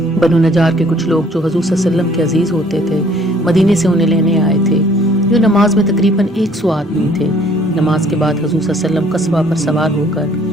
بنو نجار کے کچھ لوگ جو حضور صلی اللہ علیہ وسلم کے عزیز ہوتے تھے مدینے سے انہیں لینے آئے تھے۔ جو نماز میں تقریباً 100 آدمی تھے۔ نماز کے بعد حضور صلی اللہ علیہ وسلم قصبہ پر سوار ہو کر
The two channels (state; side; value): normal; both; correlation 0.59